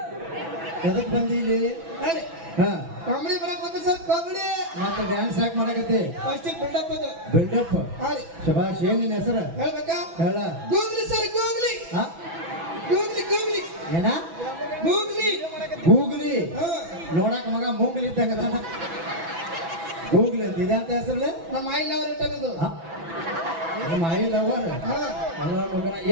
ಎದಕ್ ಬಂದಿಲ್ಲಿ ಹೇಳಿ ಹಾ ಕಾಮಿಡಿ ಮಾಡಕ್ ಬಂದ ಸರ್ ಕಾಮಿಡಿ ಮತ್ತೆ ಡ್ಯಾನ್ಸ್ ಯಾಕೆ ಮಾಡಕತ್ತಿ ಫಸ್ಟ್ ಬಿಲ್ಡಪ್ ಅದು ಬಿಲ್ಡಪ್ ಹೇಳಿ ಶಬಾಷ್ ಏನ್ ನಿನ್ನ ಹೆಸರು ಹೇಳ್ಬೇಕಾ ಹೇಳ ಗೂಗ್ಲಿ ಸರ್ ಗೂಗ್ಲಿ ಹಾ ಗೂಗ್ಲಿ ಗೂಗ್ಲಿ ಏನ ಗೂಗ್ಲಿ ಗೂಗ್ಲಿ ಹಾ ನೋಡಕ್ ಮಗ ಮೂಗ್ಲಿ ಇದ್ದಂಗ ಗೂಗ್ಲಿ ಅಂತ ಇದೆ ಅಂತ ಹೆಸರು ನಮ್ಮ ಆಯಿಲ್ ಅವ್ರ ಇಟ್ಟದ್ದು ನಮ್ಮ ಐ ಲವರ್ ಹಾ ಅಲ್ಲ ಮಗನ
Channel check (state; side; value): late; left; 6.0 ms